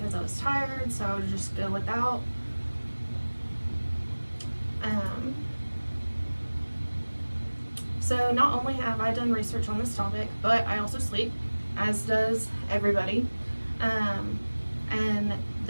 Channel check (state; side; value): inverted; both; correlation -1.00